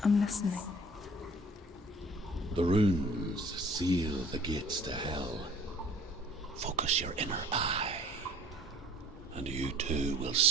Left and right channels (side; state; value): both; normal; correlation 0.50